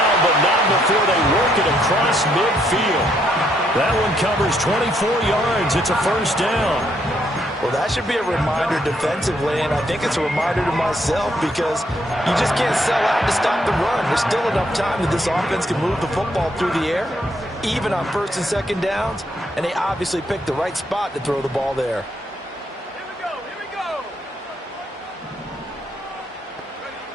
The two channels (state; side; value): normal; both; correlation 0.73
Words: but not before they work it across midfield. That one covers 24 yards. It's a 1st down. Well, that should be a reminder defensively, and I think it's a reminder to myself because you just can't sell out to stop the run. There's still enough time that this offense can move the football through the air, even on 1st and 2nd downs, and they obviously picked the right spot to throw the ball there. Here we go.